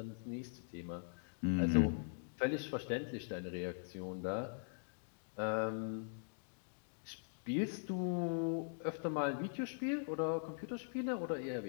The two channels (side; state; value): right; silent; digital silence